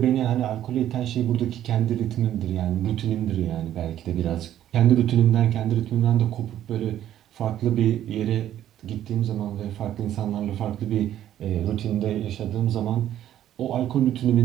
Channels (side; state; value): left; quieter; 11.6 dB